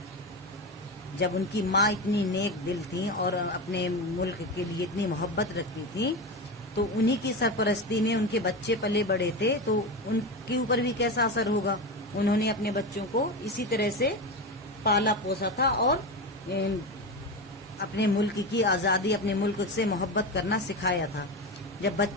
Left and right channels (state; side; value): normal; both; correlation 0.20